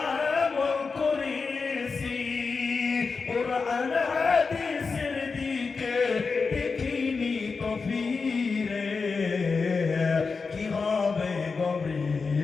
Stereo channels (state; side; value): quieter; right; 4.7 dB